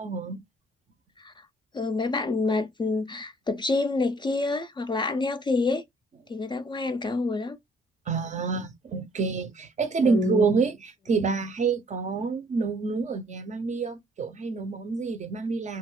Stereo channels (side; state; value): both; normal; correlation 0.61